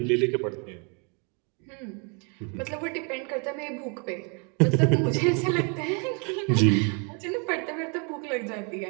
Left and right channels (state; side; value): quieter; left; 35.9 dB